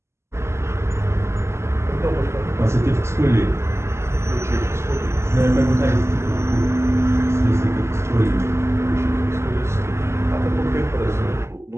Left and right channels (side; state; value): left; late; 0.13 ms